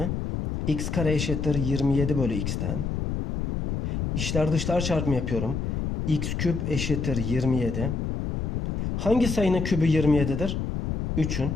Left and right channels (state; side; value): noise; left; rumble, 2 dB below the sound